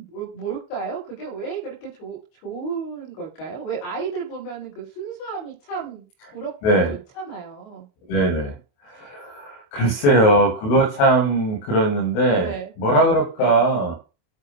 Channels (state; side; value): late; right; 28 ms